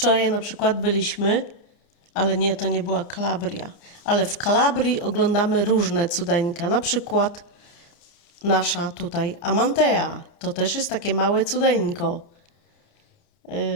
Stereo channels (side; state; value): right; late; 29 ms